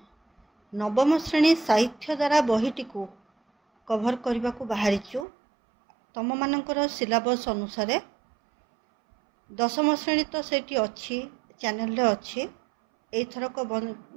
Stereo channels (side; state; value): left; drops out; at 5.2 s